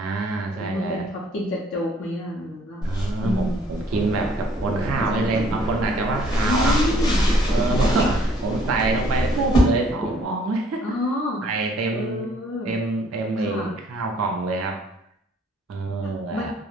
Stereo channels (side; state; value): both; normal; correlation 0.61